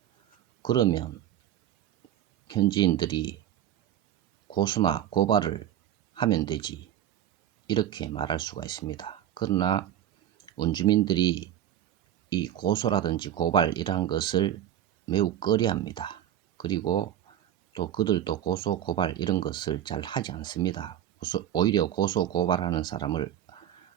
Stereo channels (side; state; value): left; quieter; 11.2 dB